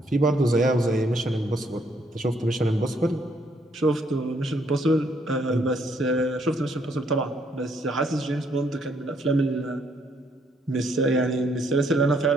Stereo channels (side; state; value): both; normal; correlation 0.70